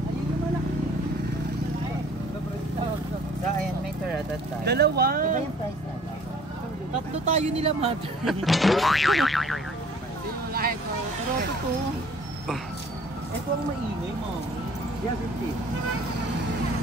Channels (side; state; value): both; normal; correlation 0.53